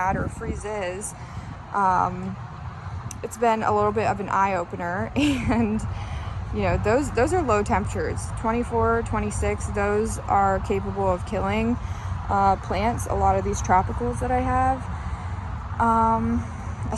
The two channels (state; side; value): identical; both; correlation 1.00